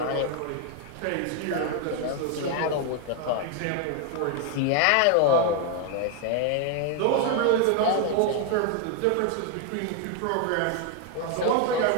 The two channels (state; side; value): different; both; correlation 0.01